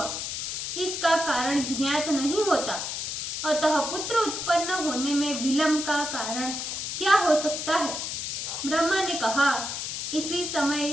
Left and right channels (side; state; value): left; noise; hiss, 4 dB below the sound